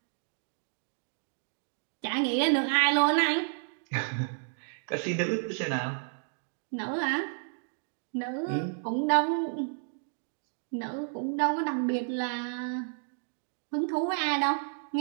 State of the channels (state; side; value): silent; left; digital silence